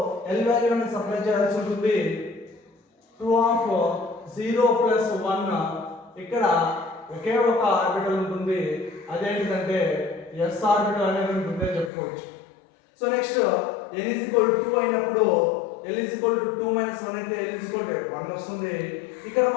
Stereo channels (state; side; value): drops out; right; at 11.9 s